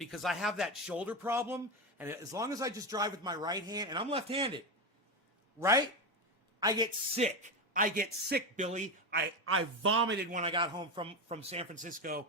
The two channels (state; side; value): normal; both; correlation 0.15